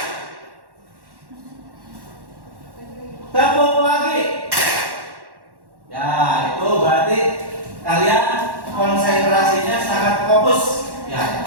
Tepuk pagi. Ya, itu berarti kalian konsentrasinya sangat fokus. Ya,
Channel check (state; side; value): late; left; 1.1 ms